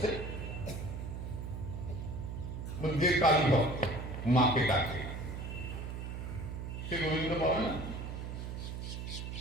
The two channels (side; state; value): right; noise; hum, 6 dB below the sound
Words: যে কালী ভক্ত মাকে ডাকে, সে গোবিন্দ পাবে না?